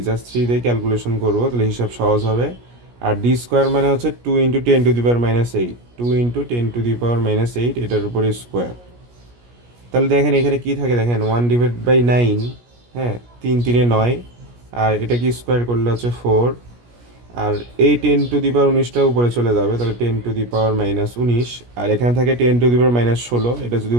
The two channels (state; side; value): late; left; 17 ms